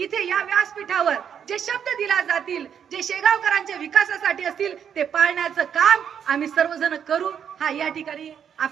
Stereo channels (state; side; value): quieter; left; 8.2 dB